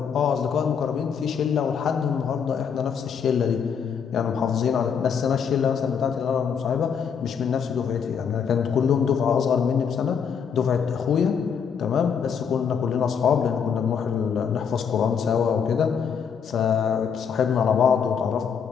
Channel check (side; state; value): right; quieter; 7.0 dB